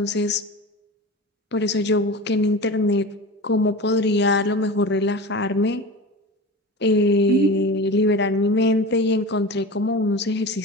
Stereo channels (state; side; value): normal; both; correlation 0.31